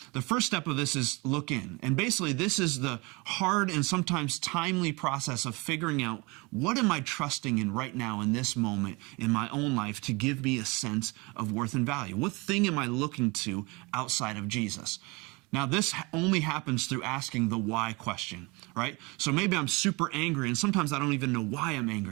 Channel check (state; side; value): quieter; left; 26.5 dB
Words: The first step of this is look in. And basically, this is the hard and sometimes timely process of figuring out what am I trusting in right now in this moment in my own life to give me a sense of worth and value? What thing am I looking to outside of Jesus? Now, this only happens through asking the why question, right? So maybe I'm super angry, and sometimes I don't even know why I'm